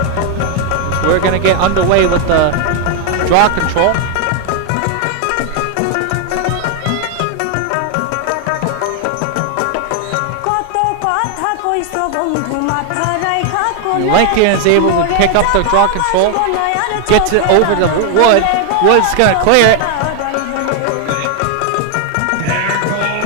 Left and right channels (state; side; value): different; both; correlation 0.00